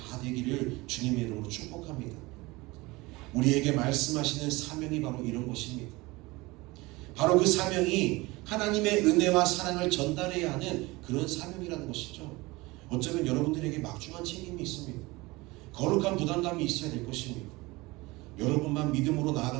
되기를 주님의 이름으로 축복합니다. 우리에게 말씀하시는 사명이 바로 이런 것입니다. 바로 그 사명이 하나님의 은혜와 사랑을 전달해야 하는 그런 사명이라는 것이죠. 어쩌면 여러분들에게 막중한 책임이 있습니다. 거룩한 부담감이 있어야 될 것입니다. 여러분만 믿음으로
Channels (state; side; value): quieter; left; 22.2 dB